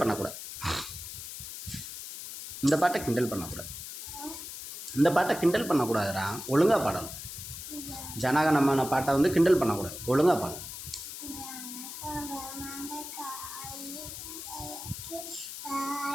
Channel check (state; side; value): noise; left; hiss, 9 dB below the sound